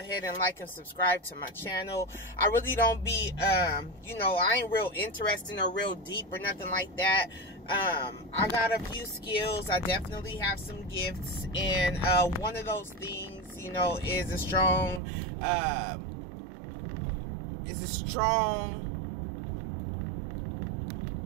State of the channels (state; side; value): drops out; left; at 15.0 s